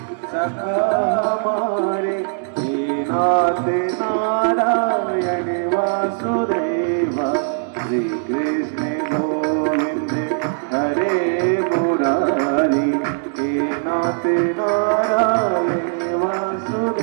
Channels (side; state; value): left; silent; digital silence